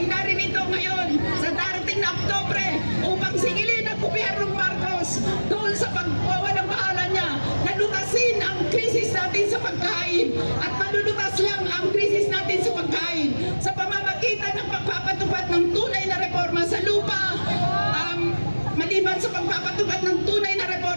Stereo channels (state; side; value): inverted; both; correlation -1.00